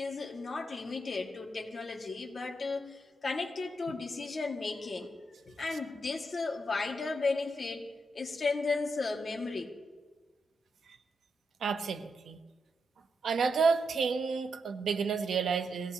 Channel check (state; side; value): normal; both; correlation 0.83